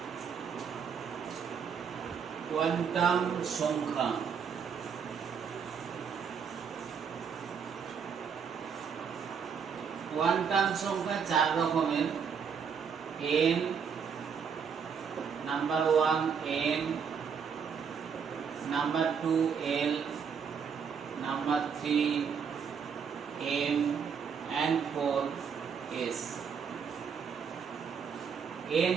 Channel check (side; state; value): left; quieter; 6.7 dB